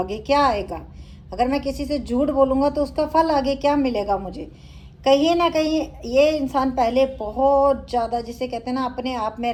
क्या आएगा। अगर मैं किसी से झूठ बोलूँगा तो उसका फल आगे क्या मिलेगा मुझे। कहीं ना कहीं ये इंसान पहले बहुत ज़्यादा, जिसे कहते हैं ना, अपने आप में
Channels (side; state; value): both; identical; correlation 1.00